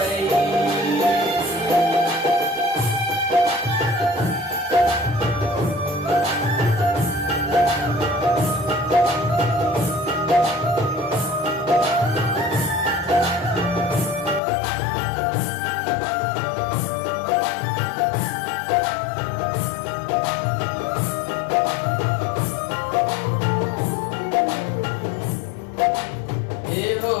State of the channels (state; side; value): drops out; right; at 14.4 s